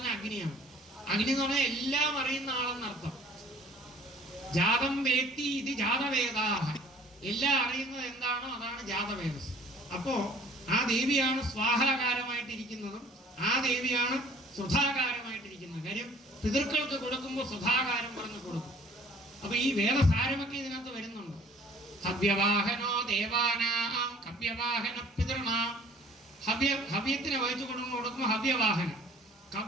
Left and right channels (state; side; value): normal; both; correlation 0.53